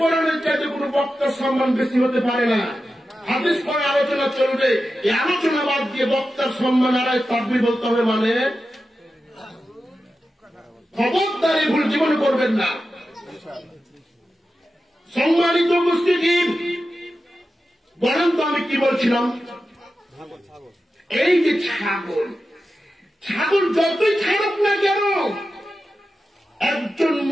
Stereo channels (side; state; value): both; normal; correlation 0.92